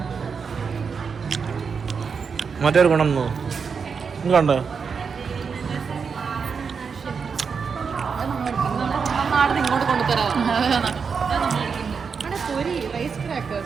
മറ്റൊരു ഗുണം കണ്ടോ? നാടിന് ഇങ്ങോട്ട് കൊണ്ടുതരാം. അവിടെ പൊരി rice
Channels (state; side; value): quieter; left; 5.8 dB